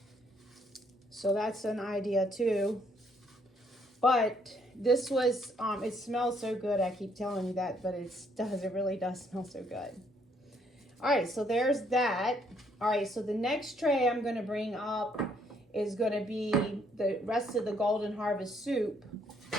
So that's an idea too. But this was, it smells so good. I keep telling you that, but it really does smell so good. All right, so there's that. All right, so the next tray I'm going to bring up is going to be the rest of the Golden Harvest soup.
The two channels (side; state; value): both; normal; correlation 0.68